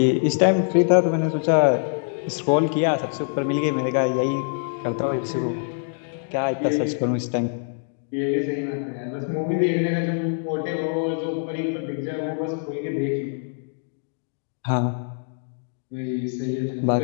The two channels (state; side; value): silent; right; digital silence